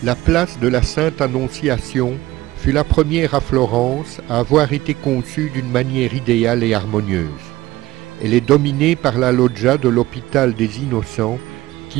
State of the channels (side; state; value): left; quieter; 17.3 dB